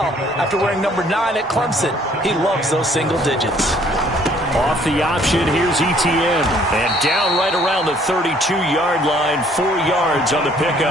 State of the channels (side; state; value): both; normal; correlation 0.60